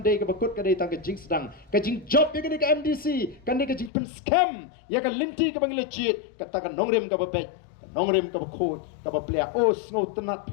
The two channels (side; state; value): right; drops out; at 3.9 s